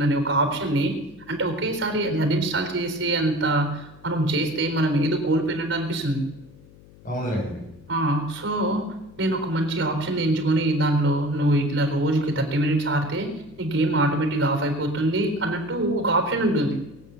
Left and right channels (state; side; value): noise; left; hum, 23 dB below the sound